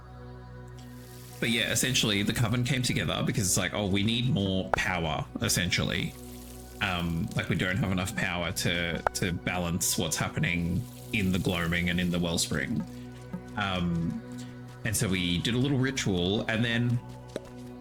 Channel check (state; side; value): identical; both; correlation 1.00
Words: But yeah, essentially the Coven came together because it's like, oh, we need more power, essentially. Like we don't have enough power to balance what's happening in the gloaming and in the wellspring. And so we did a little ritual, and then